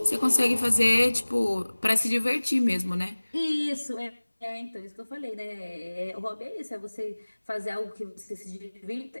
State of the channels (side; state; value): both; inverted; correlation -1.00